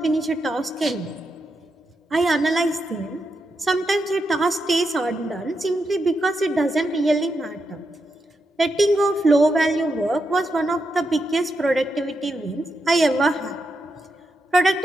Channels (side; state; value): both; normal; correlation 0.85